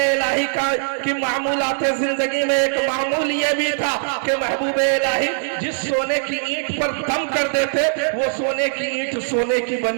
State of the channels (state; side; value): silent; left; digital silence